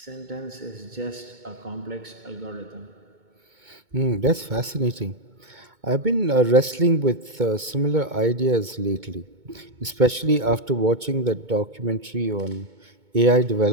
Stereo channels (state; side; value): late; left; 2.2 ms